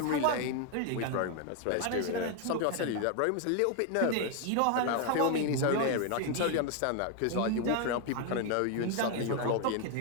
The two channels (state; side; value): different; both; correlation 0.01